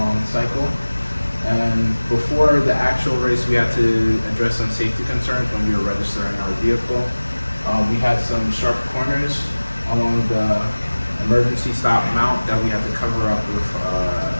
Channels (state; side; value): inverted; both; correlation -1.00